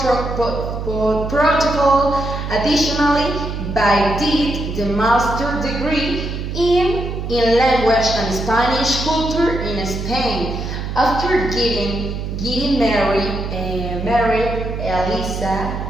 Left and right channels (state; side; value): noise; right; hum, 5 dB below the sound